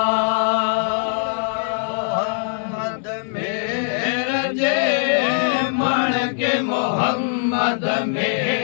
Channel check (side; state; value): right; silent; 65 dB below the other